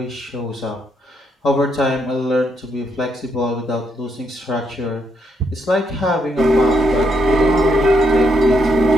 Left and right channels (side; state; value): both; normal; correlation 0.77